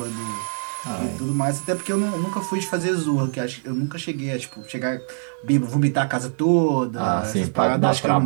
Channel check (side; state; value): left; silent; 63 dB below the other